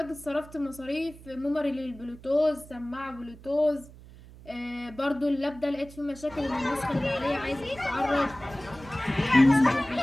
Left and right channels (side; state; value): right; noise; hum, 19 dB below the sound